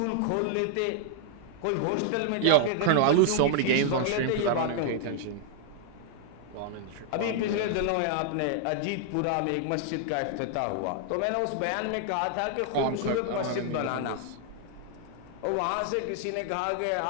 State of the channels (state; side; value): different; both; correlation -0.01